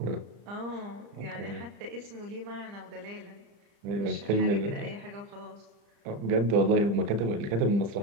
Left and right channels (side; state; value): left; late; 34 ms